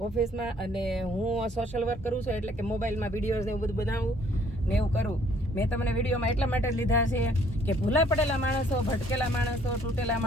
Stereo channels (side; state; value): both; normal; correlation 0.61